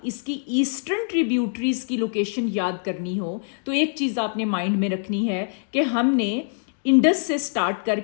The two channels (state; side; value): silent; right; digital silence